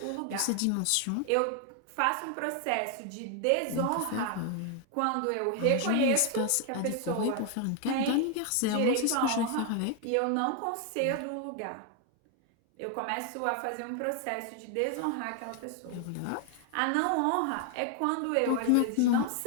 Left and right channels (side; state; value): both; different; correlation 0.00